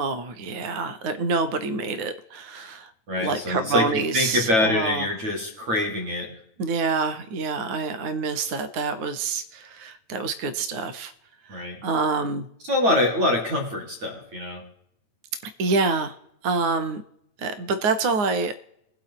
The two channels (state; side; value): late; left; 9.5 ms